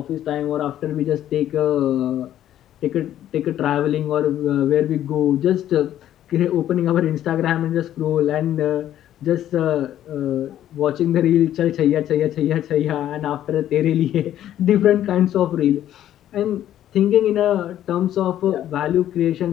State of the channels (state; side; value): quieter; right; 11.8 dB